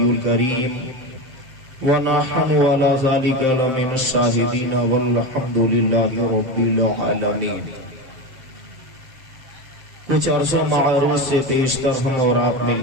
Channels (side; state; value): left; late; 7.7 ms